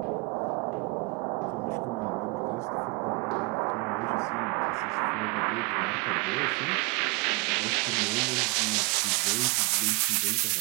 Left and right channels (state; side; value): quieter; left; 28.7 dB